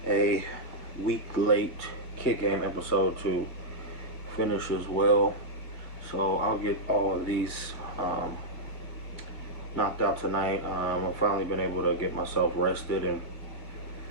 a week late kid game episode to finish as well, so I'll get all of these knocked out tonight. I've finally been able to get myself rested and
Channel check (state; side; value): late; right; 2.1 ms